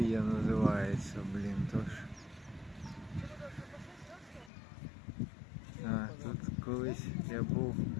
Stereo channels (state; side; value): drops out; right; at 4.5 s